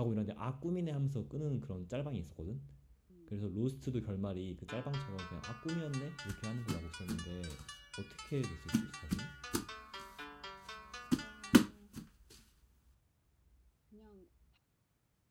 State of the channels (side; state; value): both; identical; correlation 1.00